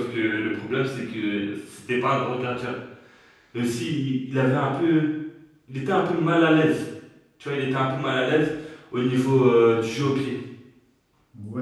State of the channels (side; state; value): both; identical; correlation 1.00